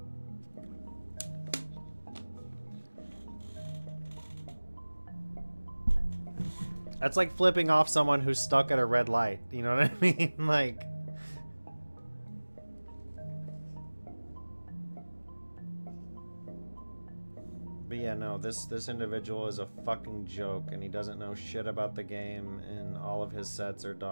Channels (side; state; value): both; inverted; correlation -1.00